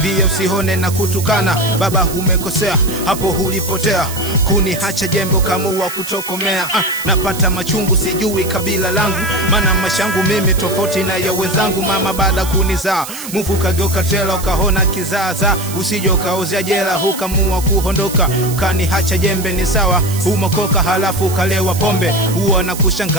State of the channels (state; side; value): noise; right; hiss, 10 dB below the sound